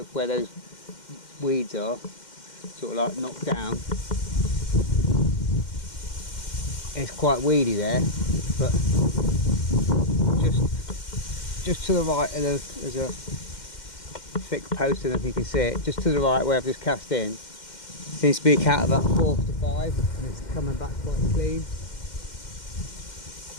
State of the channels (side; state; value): right; late; 2.1 ms